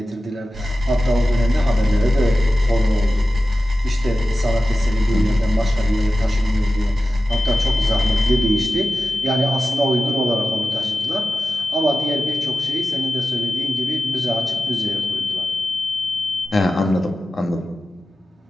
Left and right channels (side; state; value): both; normal; correlation 0.93